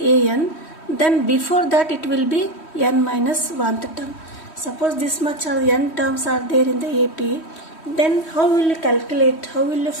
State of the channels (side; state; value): right; late; 3.1 ms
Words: Then before that it will be n minus 1th term. Suppose this much are n terms are there in the AP. Then how will you calculate? How will you